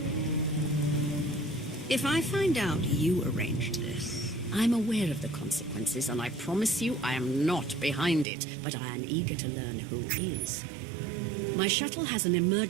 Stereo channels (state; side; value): drops out; left; at 8.2 s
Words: If I find out you arranged this... I'm aware of the consequences, and I promise you I am not behind it, but I am eager to learn who is. My shuttle has an